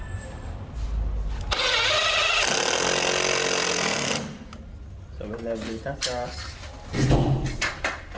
So we level it across.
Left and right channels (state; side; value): identical; both; correlation 1.00